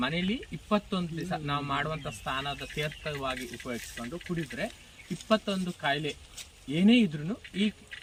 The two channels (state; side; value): identical; both; correlation 1.00